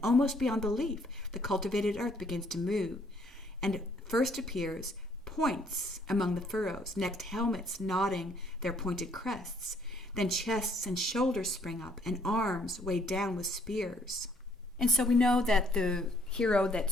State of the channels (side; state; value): both; normal; correlation 0.65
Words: almost beyond belief, the cultivated earth begins to move, and first appears points among the furrows, next helmets nodding their pointed crests. Then chests and shoulders spring up, and arms weighed down with spears." And so we know that the hero that